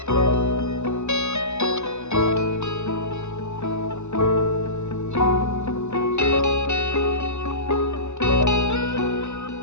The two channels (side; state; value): right; late; 0.83 ms